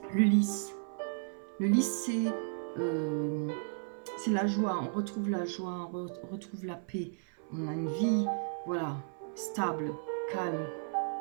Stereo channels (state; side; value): silent; left; 55 dB below the other